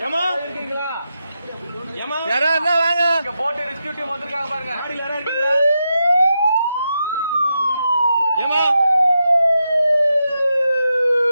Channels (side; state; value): both; inverted; correlation -0.86